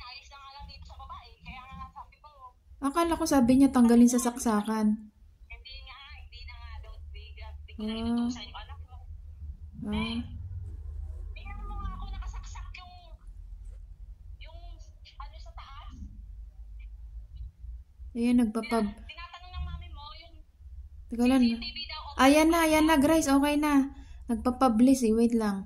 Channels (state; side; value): identical; both; correlation 1.00